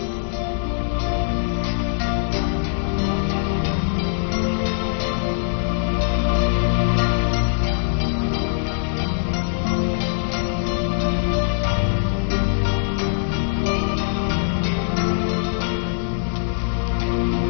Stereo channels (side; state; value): right; silent; digital silence